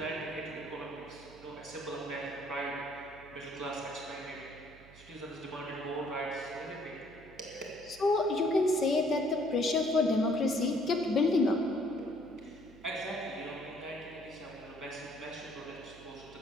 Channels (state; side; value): noise; right; hum, 22 dB below the sound